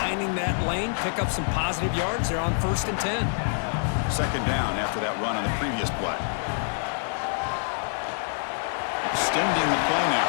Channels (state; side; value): silent; right; digital silence